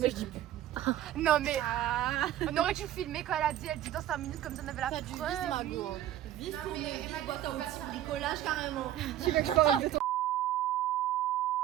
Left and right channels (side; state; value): left; quieter; 12.4 dB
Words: je dis non, mais on aurait dû filmer quand elle dit dans 5 minutes comme ça on avait la preuve. Vive pour mes boîtes à outils bricolage carrément. Tu veux que je parle de ton...